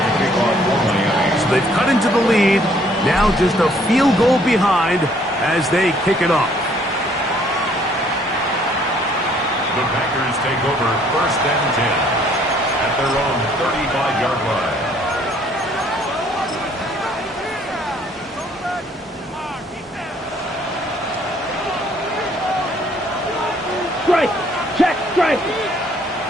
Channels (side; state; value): both; normal; correlation 0.63